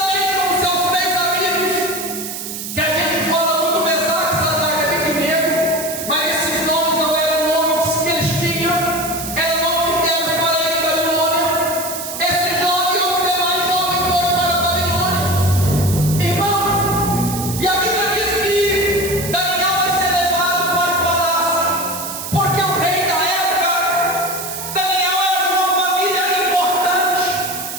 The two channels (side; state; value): right; noise; hiss, 7 dB below the sound